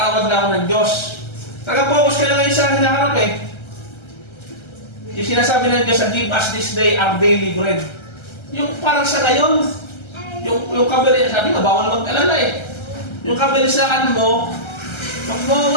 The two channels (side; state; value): right; late; 1.3 ms